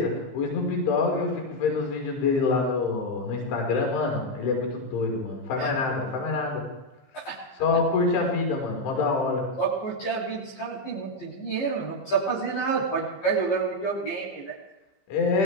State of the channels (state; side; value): late; right; 14 ms